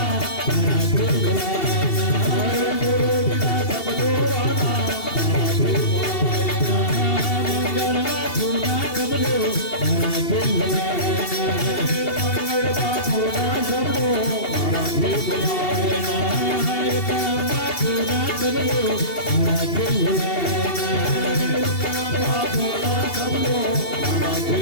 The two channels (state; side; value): late; right; 2.7 ms